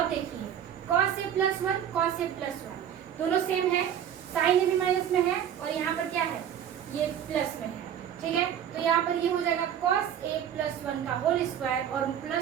देखिए cos a plus 1, cos a plus 1 दोनों सेम है, sin a भी माइनस में है और यहाँ पर क्या है, ये प्लस में है। ठीक है, तो यहाँ पर ये हो जाएगा cos a प्लस 1 का होल स्क्वायर और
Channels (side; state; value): left; quieter; 9.5 dB